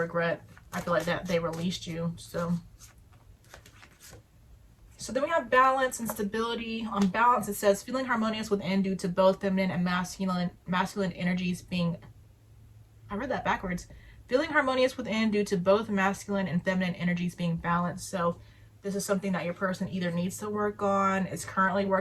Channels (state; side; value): identical; both; correlation 1.00